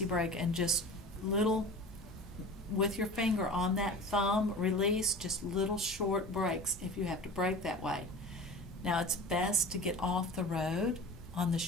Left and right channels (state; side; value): normal; both; correlation 0.36